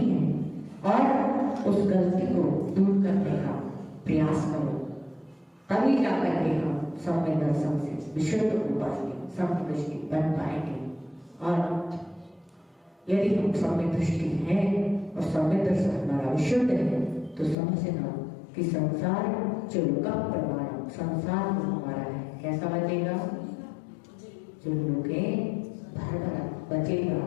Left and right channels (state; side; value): drops out; right; at 17.6 s